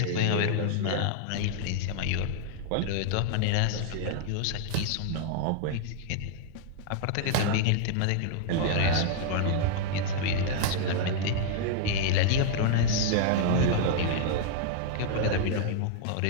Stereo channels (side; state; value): both; different; correlation -0.01